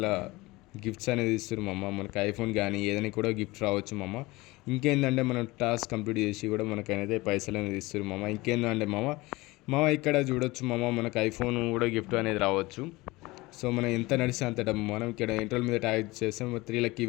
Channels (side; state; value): right; quieter; 21.4 dB